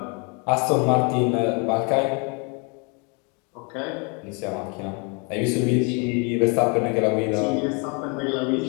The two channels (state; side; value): quieter; right; 34.0 dB